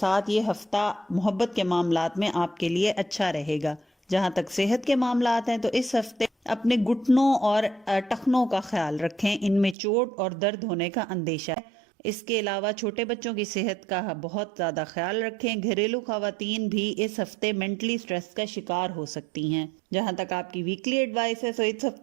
یہ ہفتہ محبت کے معاملات میں آپ کے لیے اچھا رہے گا. جہاں تک صحت کے معاملات ہیں تو اس ہفتے اپنے گھٹنوں اور ٹخنوں کا خیال رکھیں. ان میں چوٹ اور درد ہونے کا اندیشہ ہے. اس کے علاوہ چھوٹے بچوں کی صحت کا بہت زیادہ خیال رکھیں۔ گھریلو خواتین بھی اس ہفتے مینٹلی سٹریس کا شکار ہو سکتی ہیں۔ جہاں تک آپ کی ویکلی ایڈوائس ہے، تو اس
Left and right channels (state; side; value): drops out; left; at 9.8 s